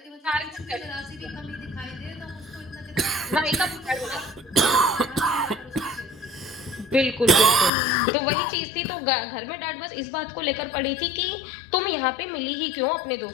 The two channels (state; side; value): drops out; right; at 7.7 s